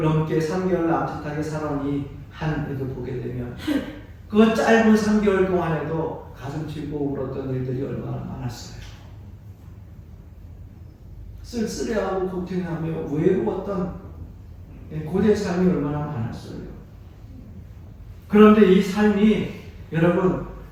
넘게 3개월 남짓하게 살아온 이 한 해도 보게 되면 그 짧은 3개월 동안에도 가슴 치고 울었던 일들이 얼마나 많았어요. 쓸쓸해하고 고통하며 외로웠던 고된 삶이 얼마나 많았어요. 그런데 이 삶이 여러분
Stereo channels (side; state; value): both; identical; correlation 1.00